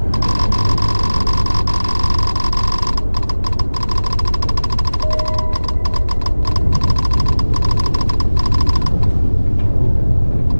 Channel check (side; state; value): both; inverted; correlation -1.00